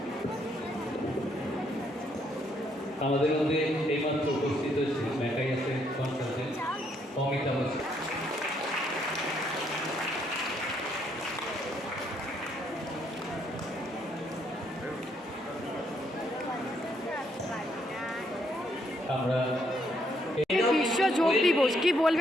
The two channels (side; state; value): both; normal; correlation 0.72